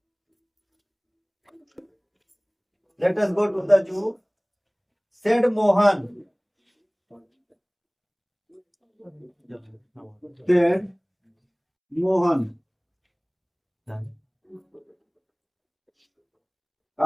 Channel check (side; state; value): both; identical; correlation 1.00